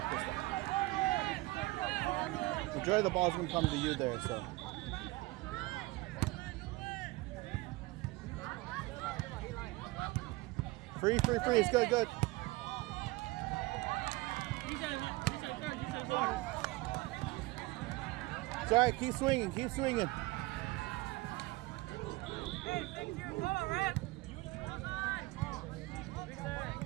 Enjoy the ball's gonna come to you there, so. Free. It's good. It's all right. Keep swinging.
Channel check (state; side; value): quieter; left; 21.3 dB